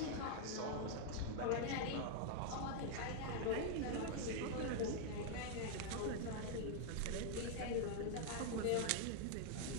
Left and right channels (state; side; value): different; both; correlation 0.00